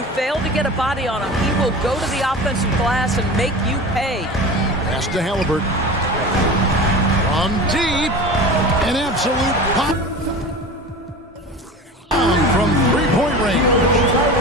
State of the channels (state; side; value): normal; both; correlation 0.34